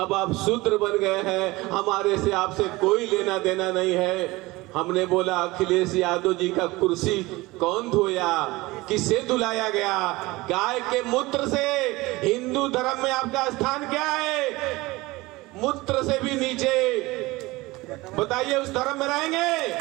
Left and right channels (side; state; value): left; quieter; 21.0 dB